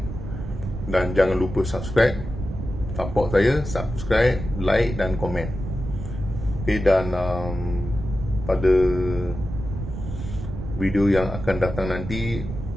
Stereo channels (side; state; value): right; noise; rumble, 7 dB below the sound